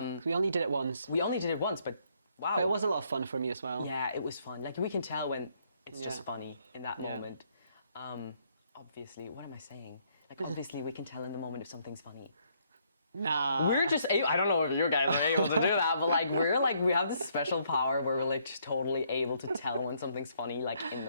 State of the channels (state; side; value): inverted; both; correlation -0.70